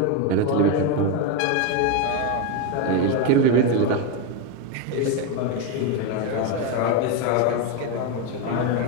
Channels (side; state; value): both; different; correlation 0.03